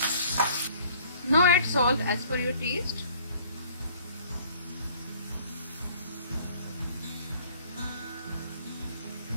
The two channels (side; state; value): both; inverted; correlation -0.55